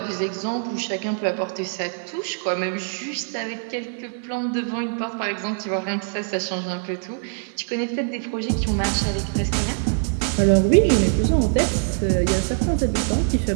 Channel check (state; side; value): silent; left; 63 dB below the other